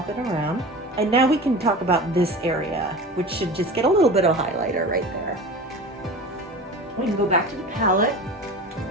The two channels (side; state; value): both; normal; correlation 0.34